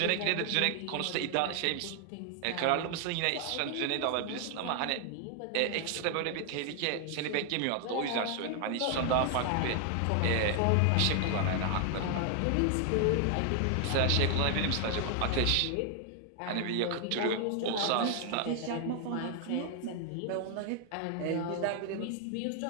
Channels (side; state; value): both; different; correlation 0.00